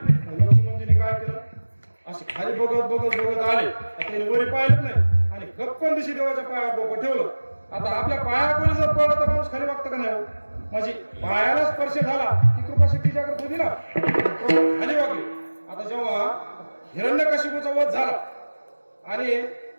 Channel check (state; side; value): inverted; both; correlation -1.00